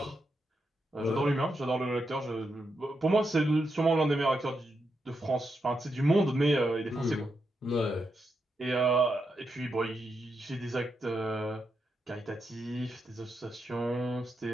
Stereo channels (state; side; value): normal; both; correlation 0.84